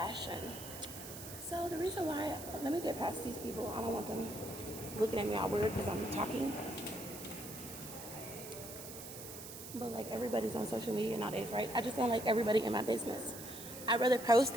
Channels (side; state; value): right; noise; hiss, 11 dB below the sound